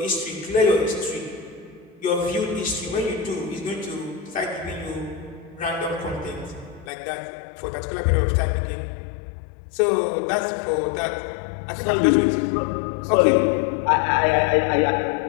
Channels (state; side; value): drops out; right; at 6.9 s